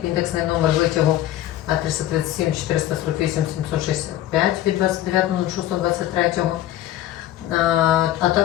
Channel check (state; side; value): quieter; right; 13.3 dB